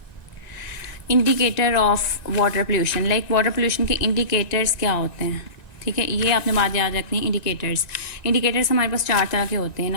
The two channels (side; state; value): right; late; 1.9 ms